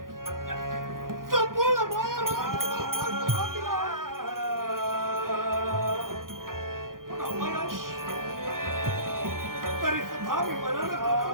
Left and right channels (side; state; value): left; late; 0.91 ms